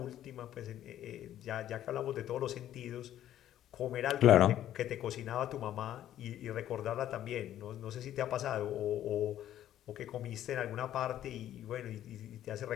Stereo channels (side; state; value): right; quieter; 11.9 dB